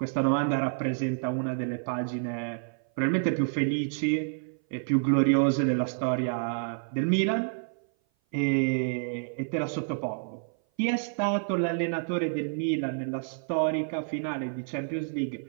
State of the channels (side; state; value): left; silent; 56 dB below the other